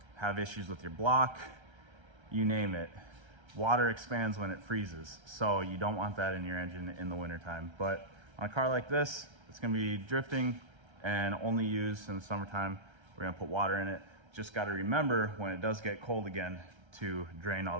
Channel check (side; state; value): left; late; 1.3 ms